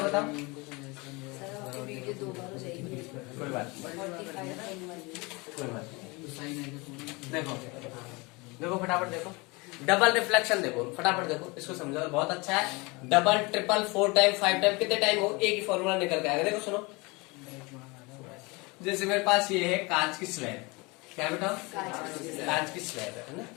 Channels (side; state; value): right; quieter; 26.1 dB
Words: बताओ? कोई बात देखो देखो फटाफट देखो, डबल रिफ्लेक्शन देखो फटाफट देखो, इसको समझो, बहुत अच्छा है। डबल ट्रिपल 4 टाइम 5 टाइम कितने टाइम हो, एक ही फॉर्मूला निकल के आएगा। देखो सुनो, जैसे मेरे पास ये है कांच की स्लैब, क्या बेटा? कांच की स्लैब है ना,